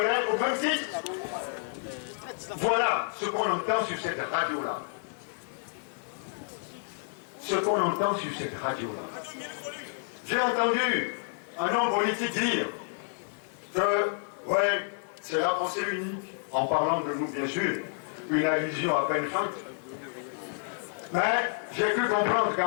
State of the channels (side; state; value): right; silent; 58 dB below the other